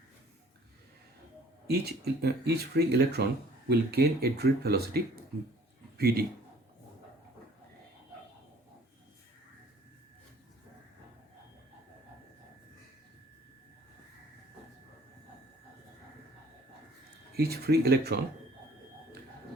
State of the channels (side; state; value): both; normal; correlation 0.54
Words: each free electron will gain a drift velocity Vd. Each free electron